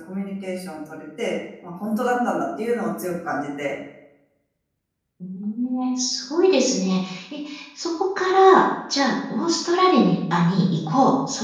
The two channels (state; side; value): identical; both; correlation 1.00